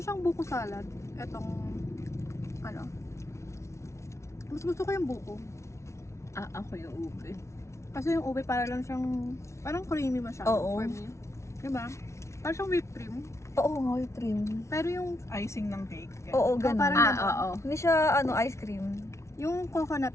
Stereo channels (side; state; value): right; late; 0.13 ms